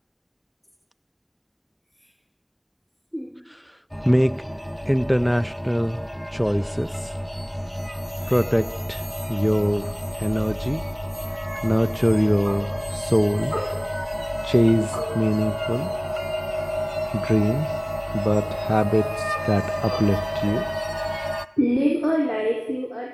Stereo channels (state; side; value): identical; both; correlation 1.00